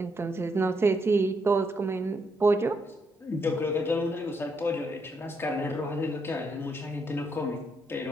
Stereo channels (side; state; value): both; normal; correlation 0.77